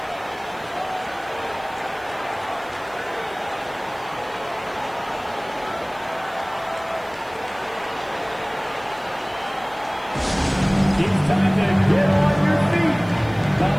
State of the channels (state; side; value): noise; right; hiss, 26 dB below the sound